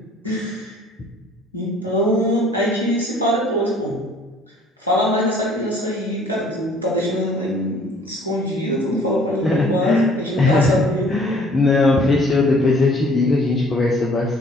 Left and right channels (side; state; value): both; normal; correlation 0.55